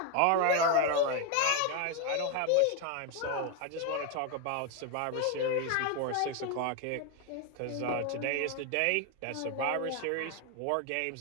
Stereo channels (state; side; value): different; both; correlation 0.01